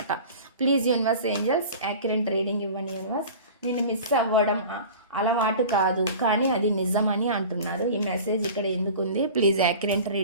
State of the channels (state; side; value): inverted; both; correlation -0.39